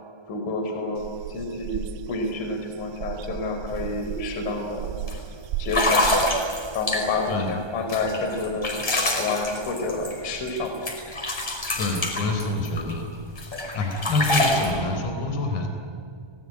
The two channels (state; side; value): late; left; 1.3 ms